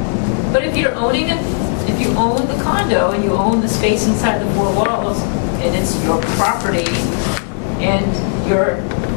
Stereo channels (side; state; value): right; silent; digital silence